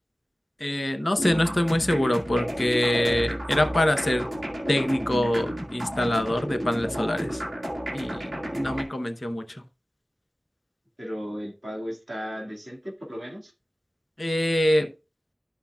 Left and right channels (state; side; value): normal; both; correlation 0.96